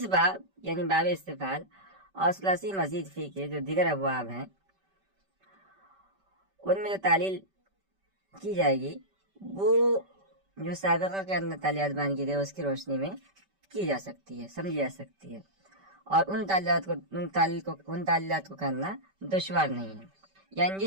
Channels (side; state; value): left; late; 5.2 ms